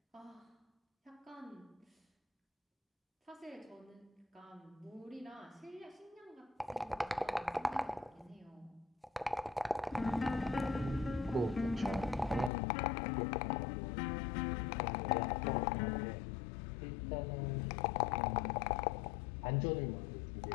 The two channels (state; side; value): drops out; right; at 12.5 s